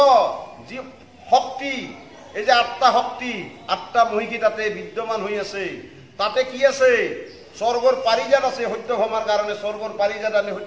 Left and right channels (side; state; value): both; identical; correlation 1.00